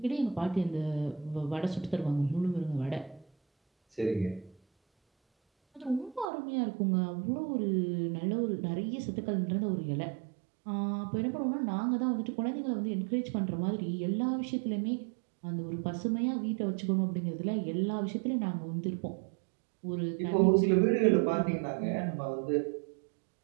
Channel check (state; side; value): drops out; left; at 6.2 s